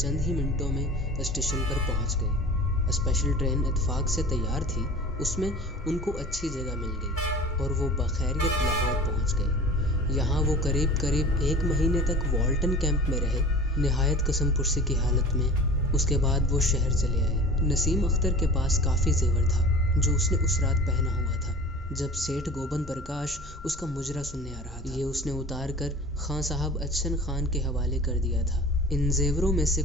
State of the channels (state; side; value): normal; both; correlation 0.40